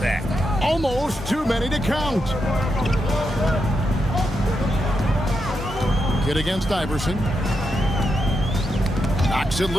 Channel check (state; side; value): normal; both; correlation 0.84